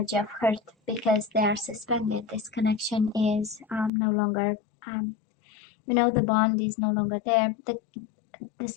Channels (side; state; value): right; drops out; at 3.9 s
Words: of hurt because they are suspended. This connection is no longer, the bond is no longer there. The